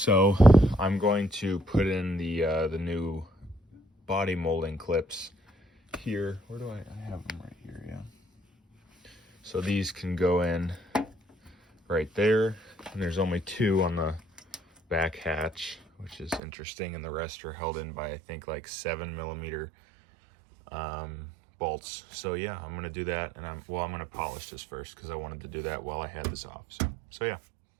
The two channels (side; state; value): left; drops out; at 16.4 s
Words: I'm going to put in the new body molding clips here. Where do I have them? Right here. Yeah, so these can go in right there, and there's only 2 on the back hatch, which is interesting, and the rest are held in by I think like 7mm bolts. So yeah, I'm gonna do that, and I'm gonna polish this first because I wanted to do that while I had this off. So So yeah.